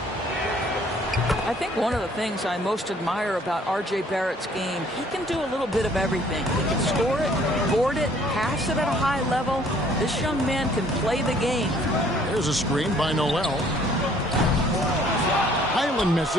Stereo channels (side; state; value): both; normal; correlation 0.59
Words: I think one of the things I most admire about R.J. Barrett's game, he can do a little bit of everything. He can score it, board it, pass it at a high level. This young man can play the game. There's a screen by Noel. Highland